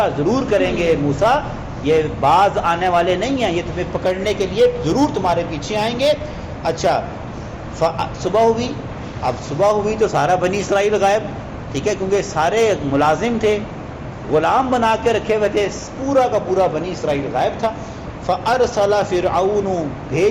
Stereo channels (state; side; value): identical; both; correlation 1.00